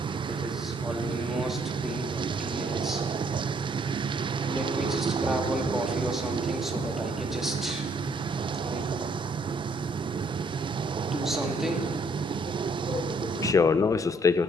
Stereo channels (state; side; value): normal; both; correlation 0.67